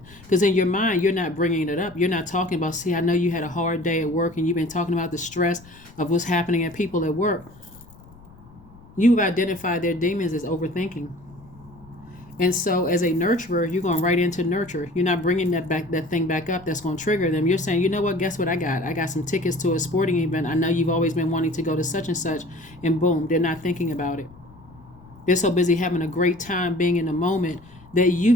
Because in your mind, you're not bringing it up. You're not talking about, see, I know you had a hard day at work and you've been talking about the stress of what's happening at people at work. You've identified their demons as overthinking. And so as a nurturer, you're going right into nurture. You're not bringing that thing back up that's going to trigger them. You're saying, you know what, guess what I got? I got some tickets to a sporting event. I know you've always been wanting to go to such and such. And boom, they're not thinking about it. They're so busy having a great time being in the moment that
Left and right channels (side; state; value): left; noise; rumble, 23 dB below the sound